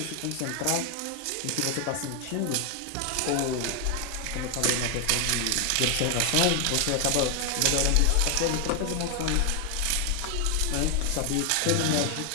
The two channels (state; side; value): different; both; correlation 0.00